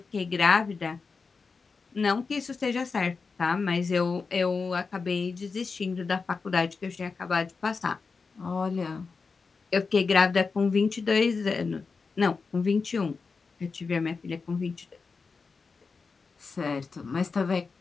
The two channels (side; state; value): right; quieter; 4.7 dB